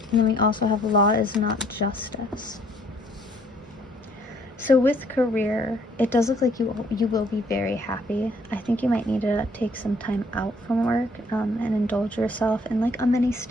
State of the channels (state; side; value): normal; both; correlation 0.63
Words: And then we also have law is not justice. So with career, it does look like you will be very happy. I think you might need to take some time out from work and indulge yourself in like a mini